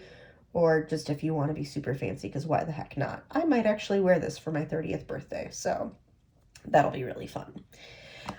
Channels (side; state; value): both; identical; correlation 1.00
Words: or just if you want to be super fancy, because why the heck not? I might actually wear this for my 30th birthday, so that'll be really fun.